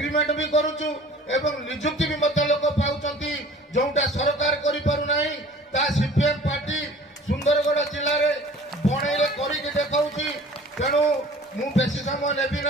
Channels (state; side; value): normal; both; correlation 0.47